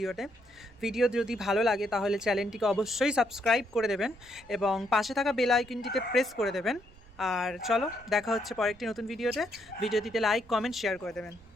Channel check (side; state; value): right; noise; rumble, 25 dB below the sound